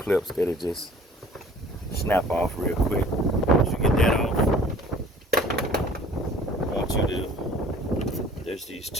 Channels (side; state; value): both; normal; correlation 0.50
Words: that'll just snap off real quick. Once you get that off, I want you to, there's these